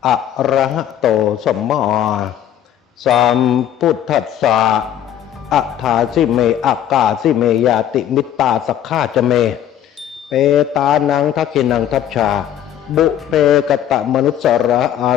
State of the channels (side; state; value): right; quieter; 10.6 dB